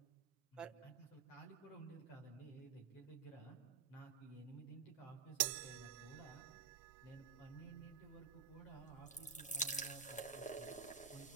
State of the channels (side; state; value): left; quieter; 6.1 dB